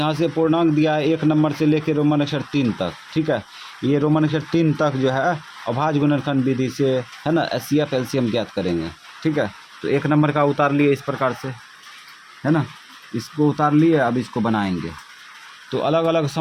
से पूर्णांक दिया है 1 नंबर से लेकर रोमन अक्षर 3 तक, ठीक है। ये रोमन अक्षर 3 तक जो है अभाज्य गुणनखंड विधि से, है ना, एचसीएफ एलसीएम ज्ञात करेंगे, ठीक है। तो 1 नंबर का उतार लिए इस प्रकार से, है ना, इसको उतार लिए। अब इसको बनाएंगे तो अलग अलग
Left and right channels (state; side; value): identical; both; correlation 1.00